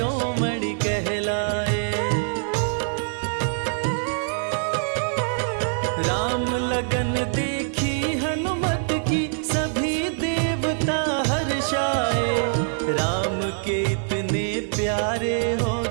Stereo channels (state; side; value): silent; left; 55 dB below the other